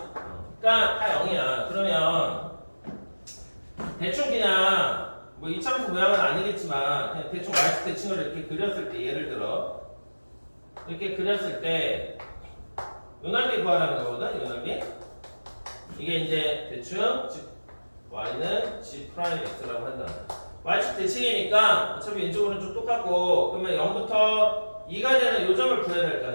그러니까 다 0이야. 그러면 대충 그냥 뭐 이차함수 모양은 아니겠지만 그냥 대충 y축 대칭을 이렇게 그렸을 때 예를 들어 이렇게 그렸을 때 요 넓이 구하라는 거거든. 요 넓이. 이게 이제 대충 y는 g 프라임 x라고 한다. y축 대칭이니까 어차피 왼쪽 오른쪽 똑같고 그러면 0부터 2가 되는 요 점을 구해야 될 거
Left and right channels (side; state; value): both; inverted; correlation -1.00